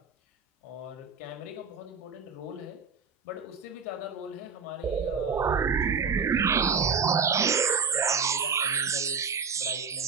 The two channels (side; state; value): left; quieter; 5.5 dB